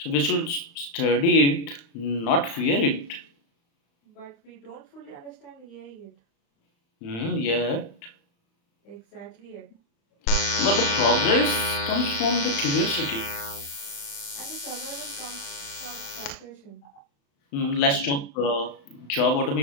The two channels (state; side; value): late; right; 35 ms